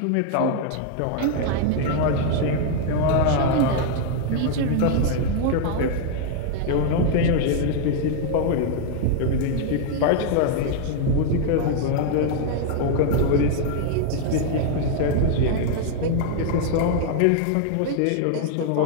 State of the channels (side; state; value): both; different; correlation 0.00